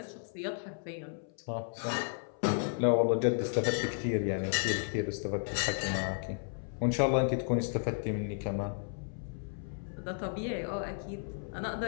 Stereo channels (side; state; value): right; silent; 55 dB below the other